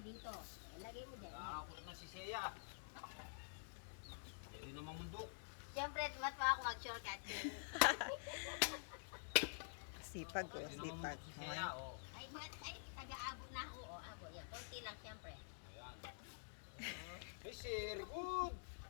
dito. Lagay mo dyan. Nakakot na si Seiya. Hindi naman mundok. Siyempre, mat pa ako mag-shortcut. Sipag o, Hindi naman sipag. mundok si Seiya. Oh. Ay, taga-abot na ako. Oo, abot. Yan, konti lang siyempre. Ayan. Hey, sir, good.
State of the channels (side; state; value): right; silent; digital silence